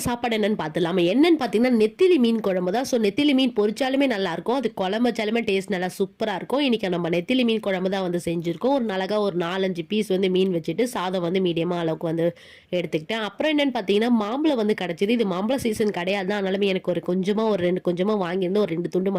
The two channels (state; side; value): identical; both; correlation 1.00